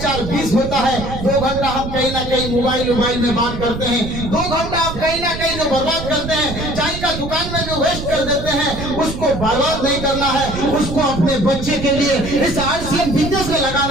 20 होता है। 2 घंटा हम कहीं ना कहीं मोबाइल में बात करते हैं। 2 घंटा आप कहीं ना कहीं जो बर्बाद करते हैं, चाय का दुकान में जो वेस्ट कर देते हैं, उसको बर्बाद नहीं करना है, उसको अपने बच्चे के लिए इस RCM बिजनेस में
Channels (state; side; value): noise; right; rumble, 8 dB below the sound